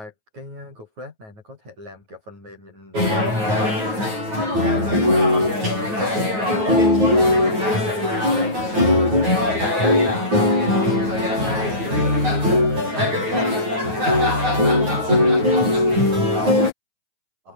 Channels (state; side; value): late; left; 9.3 ms